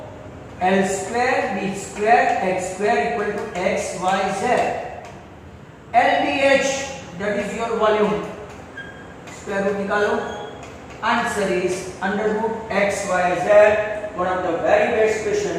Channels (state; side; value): identical; both; correlation 1.00